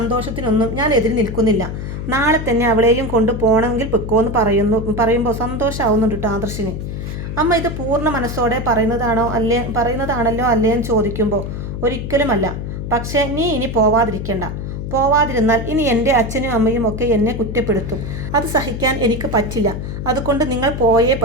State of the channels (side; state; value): left; noise; hum, 6 dB below the sound